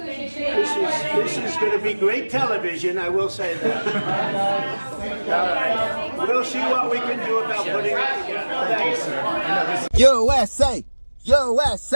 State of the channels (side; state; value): both; inverted; correlation -1.00